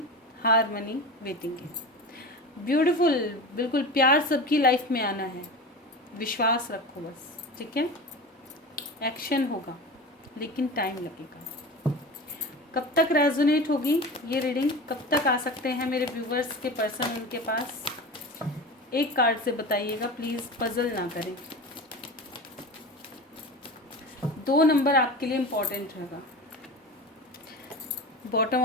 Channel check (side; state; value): both; normal; correlation 0.30